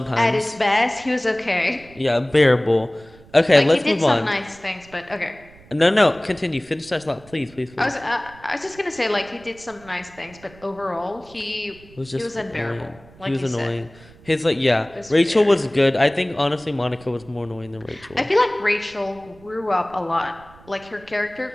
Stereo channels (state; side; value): noise; right; rumble, 24 dB below the sound